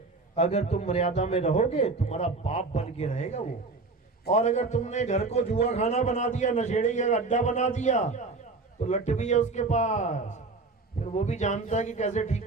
अगर तुम मर्यादा में रहोगे तुम्हारा बाप बन के रहेगा वो, और अगर तुमने घर को जुआ खाना बना दिया, नशेड़ी का अड्डा बना दिया, तो लट भी है उसके पास, फिर वो भी जानता है कि कैसे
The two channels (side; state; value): left; quieter; 3.7 dB